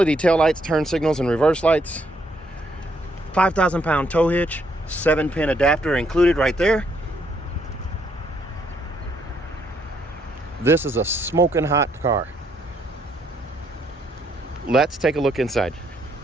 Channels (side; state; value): both; normal; correlation 0.72